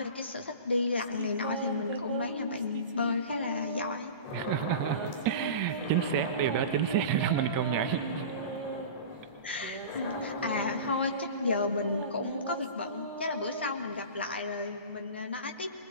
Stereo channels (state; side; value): inverted; both; correlation -0.33